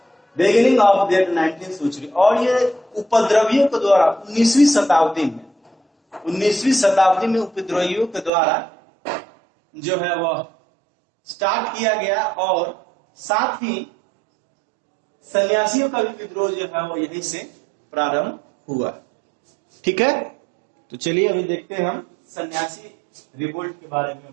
beginning of the 19th century. और ये उपद्रवियों के द्वारा 19वीं शताब्दी में उपद्रवियों के द्वारा जो है वह स्टार्ट किया गया और साथ ही सन्यासियों का भी विद्रोह जो है वो यहीं से प्रारंभ हुआ। ठीक है, तो चलिए अभी देखते हैं हम सन्यासी रिवोल्ट के बारे में।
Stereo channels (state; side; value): drops out; left; at 8.3 s